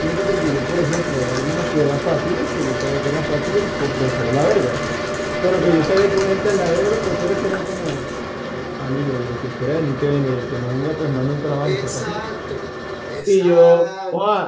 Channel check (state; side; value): identical; both; correlation 1.00